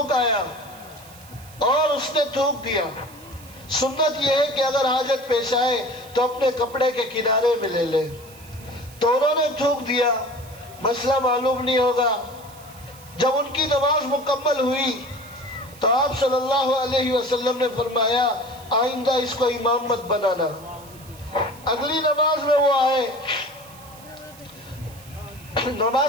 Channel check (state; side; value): noise; right; hiss, 21 dB below the sound